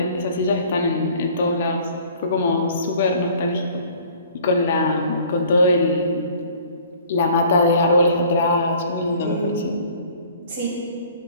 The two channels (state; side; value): inverted; both; correlation -0.52